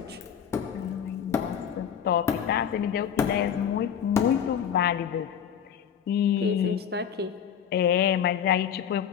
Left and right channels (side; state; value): right; quieter; 8.5 dB